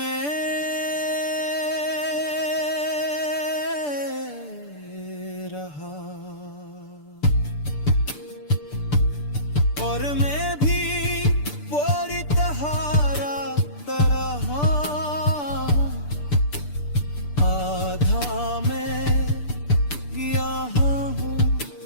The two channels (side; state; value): right; late; 6.8 ms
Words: रहा, और मैं भी पूरी तहारा तरह आधा मैं गया हूँ,